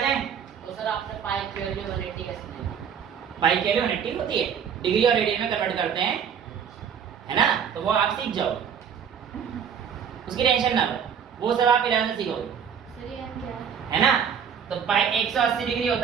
तो सर आपने पाई की वैल्यू 180 कैसे दी? पाई के लिए 180 होती है, डिग्री और रेडियन में कन्वर्ट करते हैं, है ना, तो वो आप सीख जाओ, उसकी टेंशन ना लो, वो सब आप 11 से सीखोगे, सर ये n क्या है ना। तो पाई 180 डिग्री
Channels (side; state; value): left; quieter; 7.7 dB